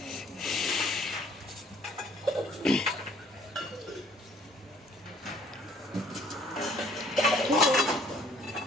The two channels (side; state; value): both; normal; correlation 0.58